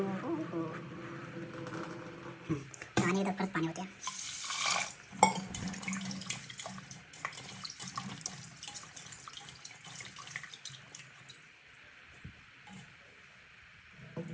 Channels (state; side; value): identical; both; correlation 1.00